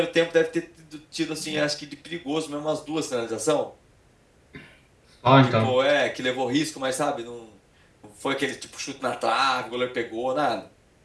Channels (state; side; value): identical; both; correlation 1.00